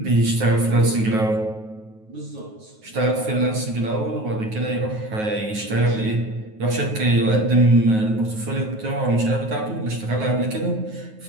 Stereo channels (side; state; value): left; late; 9.4 ms